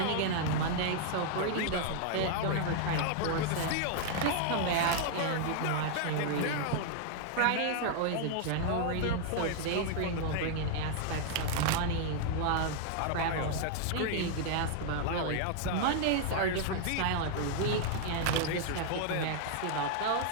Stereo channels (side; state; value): both; different; correlation 0.00